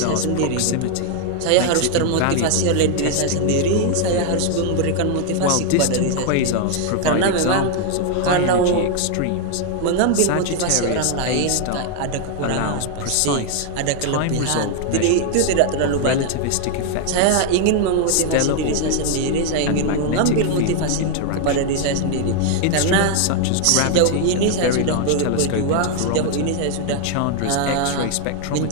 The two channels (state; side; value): different; both; correlation 0.00